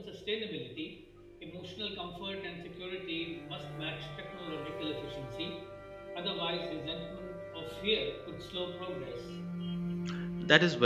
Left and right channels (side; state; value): both; identical; correlation 1.00